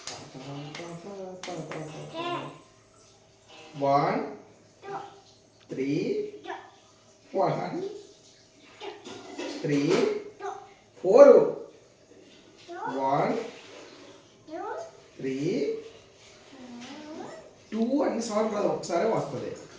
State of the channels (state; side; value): identical; both; correlation 1.00